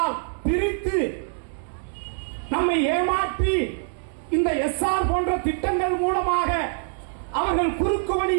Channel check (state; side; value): silent; left; 62 dB below the other